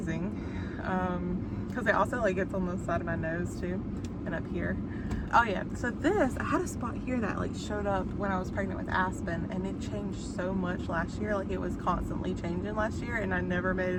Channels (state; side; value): identical; both; correlation 1.00